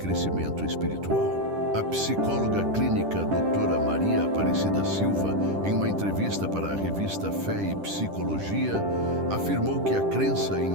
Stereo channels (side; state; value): left; late; 10 ms